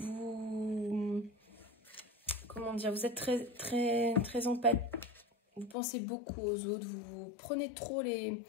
Comment dire, vous êtes très, très, très empathique. Vous pensez beaucoup aux autres. Vous prenez trop les...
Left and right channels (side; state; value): right; drops out; at 5.8 s